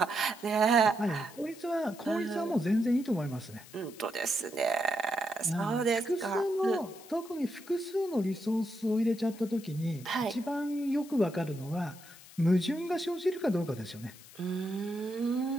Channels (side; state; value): left; noise; hiss, 20 dB below the sound